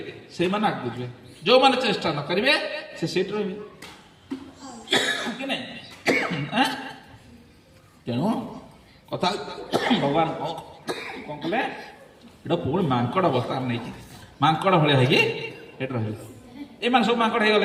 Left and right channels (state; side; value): identical; both; correlation 1.00